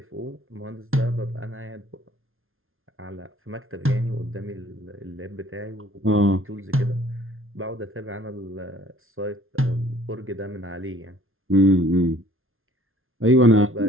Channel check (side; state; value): left; late; 0.60 ms